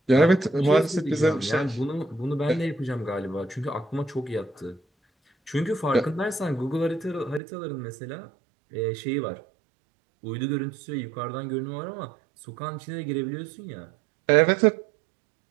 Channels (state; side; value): drops out; left; at 7.4 s